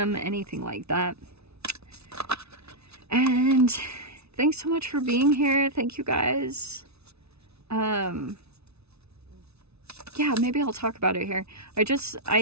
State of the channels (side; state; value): left; late; 0.80 ms